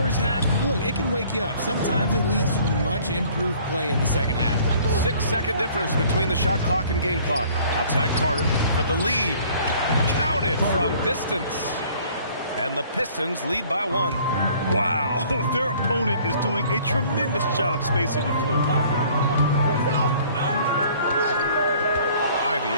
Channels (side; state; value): both; inverted; correlation -0.55